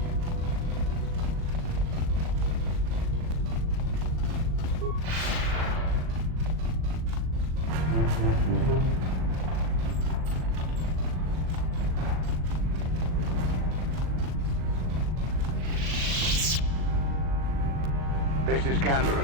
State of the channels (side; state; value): left; late; 38 ms